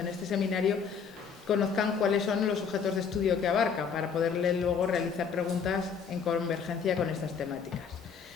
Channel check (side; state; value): right; quieter; 6.4 dB